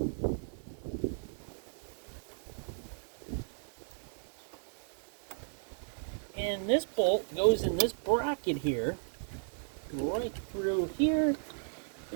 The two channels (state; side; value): silent; left; digital silence